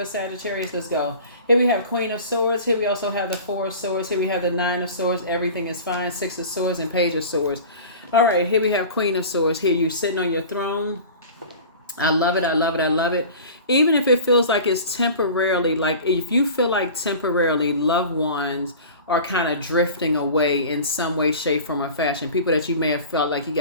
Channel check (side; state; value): both; inverted; correlation -0.38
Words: Sagittarius. Let's go. Here we have Queen of Swords. Here we also have the Four of Swords. Here we have the Nine of Swords. Everything is fine. Six of Swords and Page of Swords. All right, here we have Queen of Swords. Here you sitting on your throne. I love it. I love it. I love it. Even if it feels like it's temporarily, like if you feel like temporarily loved ones are kind of drifting away in some way, shape, form, or fashion. People that you may have felt like you